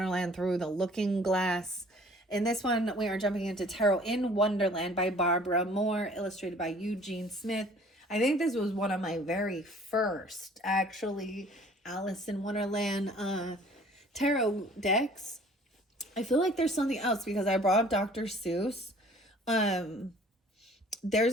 Through the Looking Glass. In this one, we are jumping into Tarot in Wonderland by Barbara Moore, illustrated by Eugene Smith. I think this was one of my very first, actually, Alice in Wonderland tarot decks. I feel like there's something else because I brought up Dr. Seuss.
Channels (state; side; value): normal; both; correlation 0.52